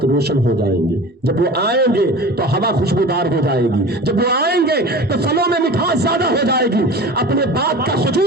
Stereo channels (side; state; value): both; normal; correlation 0.37